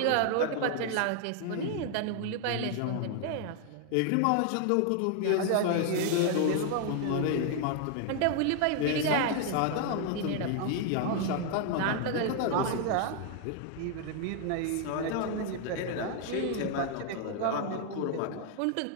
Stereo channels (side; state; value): both; different; correlation 0.00